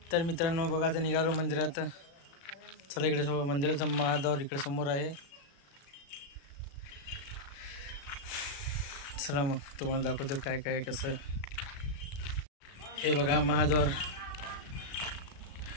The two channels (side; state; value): right; late; 36 ms